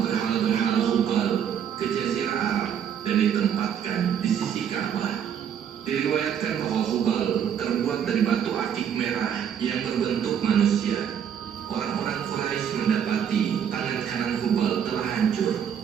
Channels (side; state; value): left; quieter; 8.6 dB